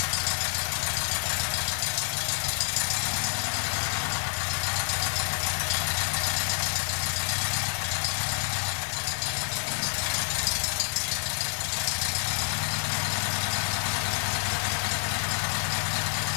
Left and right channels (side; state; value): right; silent; digital silence